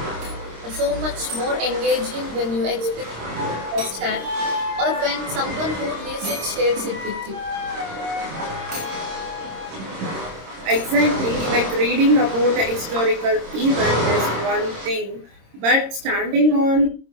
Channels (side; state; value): left; late; 26 ms